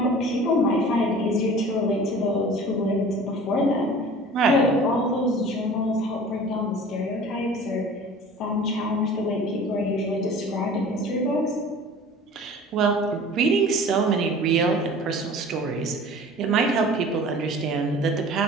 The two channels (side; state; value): both; normal; correlation 0.43